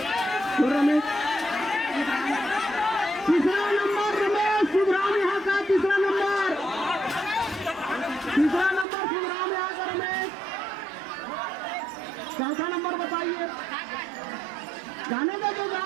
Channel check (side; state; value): left; drops out; at 8.8 s